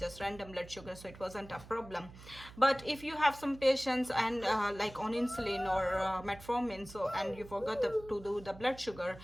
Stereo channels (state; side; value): noise; right; hum, 18 dB below the sound